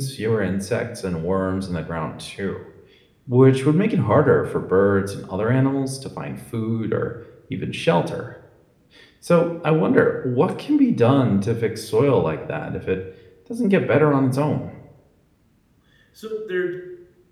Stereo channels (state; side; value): identical; both; correlation 1.00